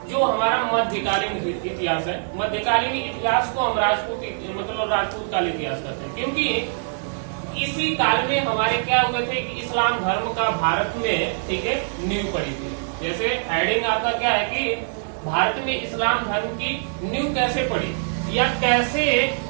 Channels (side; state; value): left; silent; 56 dB below the other